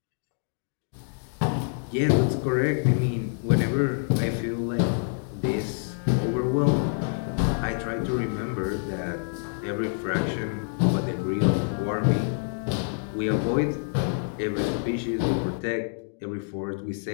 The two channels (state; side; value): silent; right; digital silence